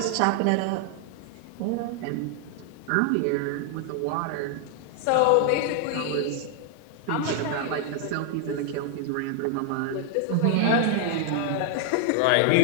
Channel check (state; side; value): different; both; correlation 0.00